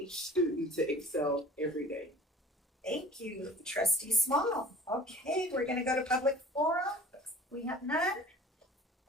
student to excel every day. Thank you, Trustee Small. Okay, we're gonna go to public forum. We have none.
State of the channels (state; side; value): normal; both; correlation 0.44